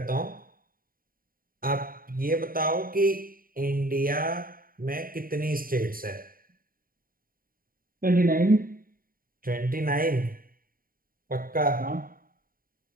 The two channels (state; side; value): late; left; 0.41 ms